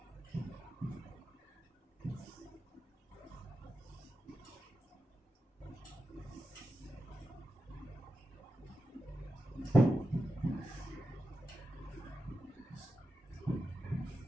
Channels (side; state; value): both; normal; correlation 0.90